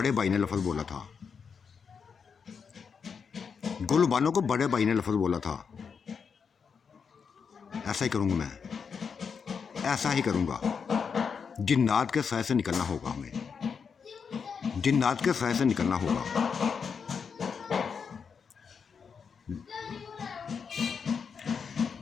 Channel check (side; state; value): right; quieter; 6.1 dB